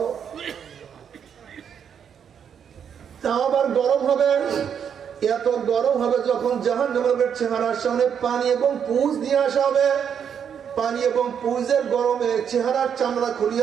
তা আবার গরম হবে, এত গরম হবে যখন জাহান্নামীদের চেহারার সামনে পানি এবং পুইজ নিয়ে আসা হবে। পানি এবং পুইজের গরমে চেহারার চামড়া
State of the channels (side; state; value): left; quieter; 7.9 dB